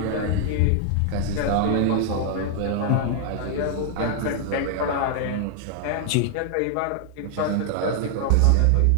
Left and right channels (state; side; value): different; both; correlation 0.00